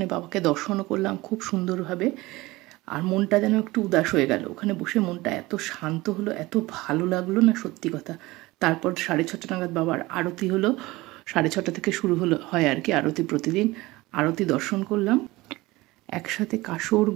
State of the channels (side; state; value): left; quieter; 20.3 dB